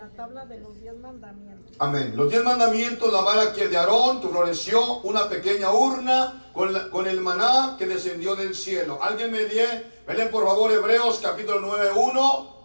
tabla de los 10 mandamientos. Amén. Los 10 mandamientos, la vara que de Aarón que floreció, una pequeña urna con el maná que descendió del cielo. Alguien me lee por favor Hebreos capítulo 9:1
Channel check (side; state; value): both; inverted; correlation -1.00